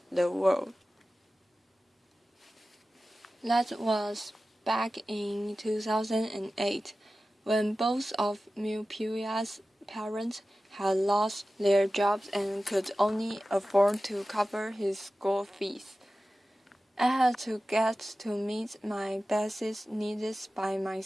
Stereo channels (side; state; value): both; normal; correlation 0.95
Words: the world. That was back in 2008, when both of Mupuya's parents had lost their jobs and could only afford to cover his school fees. I had to get to meet my basic needs by